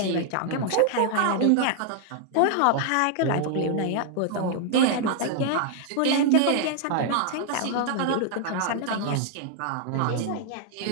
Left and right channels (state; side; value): different; both; correlation 0.00